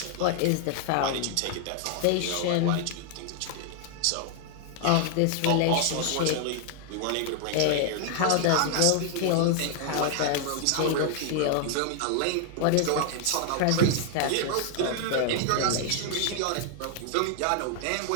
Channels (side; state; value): both; different; correlation 0.00